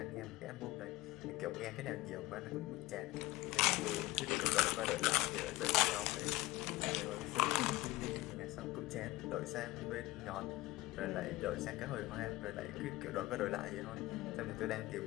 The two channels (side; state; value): right; quieter; 19.4 dB